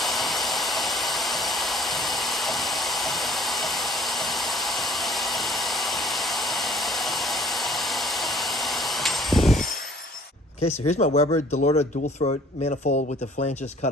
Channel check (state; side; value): normal; both; correlation 0.54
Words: Okay, so here's my Weber Delorto dual throat manifold with the flanges